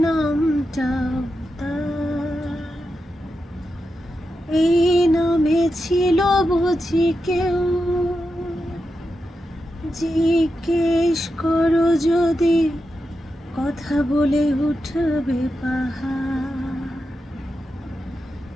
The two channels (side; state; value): both; normal; correlation 0.88